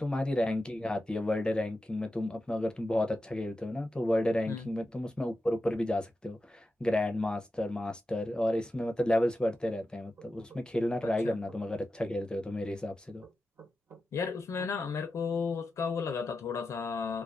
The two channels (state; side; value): normal; both; correlation 0.91